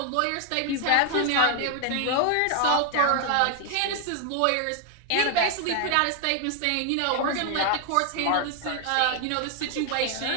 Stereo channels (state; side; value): different; both; correlation 0.00